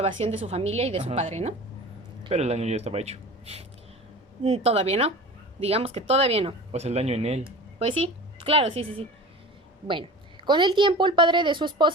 de su familia y de su padre, ¿no? Pero el daño ya estaba hecho. Todavía no. Digamos que todavía no. O sea, el daño en él. Pues sí, claro, sí. Bueno. Con el tiempo, el padre de su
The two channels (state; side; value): normal; both; correlation 0.37